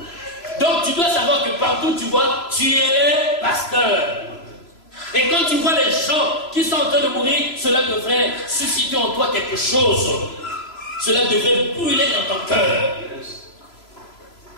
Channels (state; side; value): late; right; 3.0 ms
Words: Donc tu dois savoir que partout tu vois, tu es pasteur. Et quand tu vois les gens qui sont en train de mourir, cela devrait susciter en toi quelque chose. Cela devrait brûler dans ton cœur.